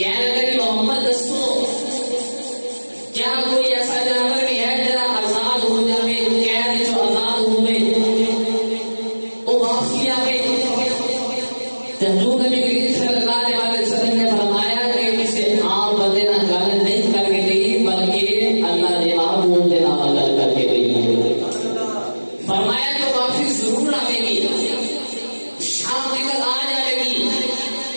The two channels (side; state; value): both; inverted; correlation -1.00